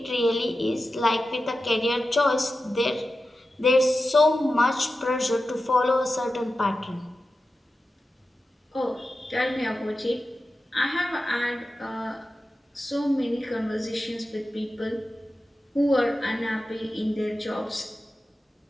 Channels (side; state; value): both; normal; correlation 0.92